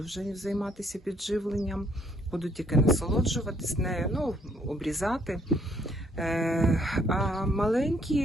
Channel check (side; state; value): both; normal; correlation 0.67